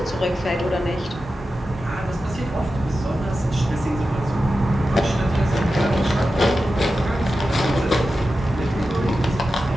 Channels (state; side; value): normal; both; correlation 0.92